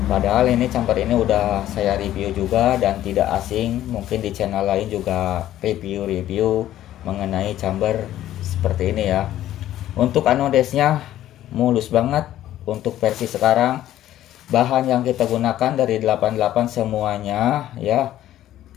Padahal ini chamber ini udah saya review juga dan tidak asing, mungkin di channel lain juga review mengenai chamber seperti ini ya. Untuk anodesnya mulus banget. Untuk versi sekarang, bahan yang kita gunakan dari 88 semuanya ya,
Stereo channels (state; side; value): quieter; right; 13.0 dB